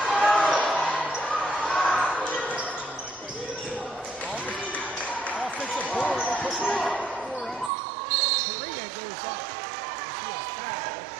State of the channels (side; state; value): left; drops out; at 7.7 s